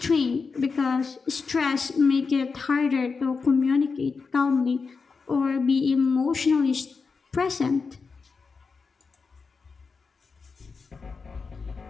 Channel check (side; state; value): right; quieter; 4.8 dB